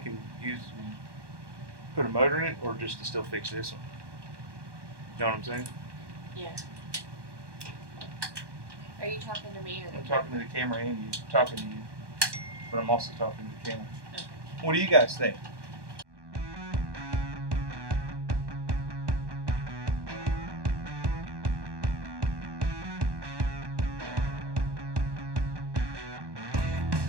and put a motor in it, or just to still fix this one? You know what I'm saying? Yeah. Are you talking to me or I'm talking to the camera and you. I'm talking to you. But I'm also talking to the camera. Okay. What do you guys think?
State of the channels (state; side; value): late; left; 1.1 ms